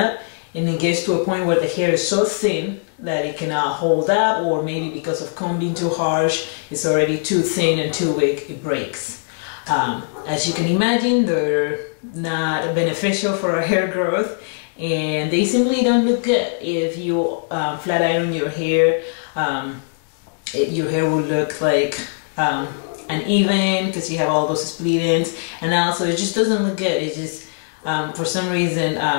and it gets to a point where the hair is so thin that it cannot hold up, or maybe because of combing too harsh, it's already too thin and too weak, it breaks. As you can imagine, they're not beneficial for our hair growth, and they simply don't look good. If you flat iron your hair, your hair will look like uneven because you have all those split ends, and also it just doesn't look good. It just for some reason,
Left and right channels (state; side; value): silent; right; 65 dB below the other